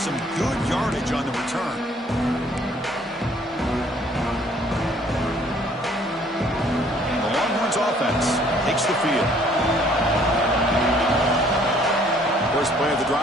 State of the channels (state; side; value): normal; both; correlation 0.60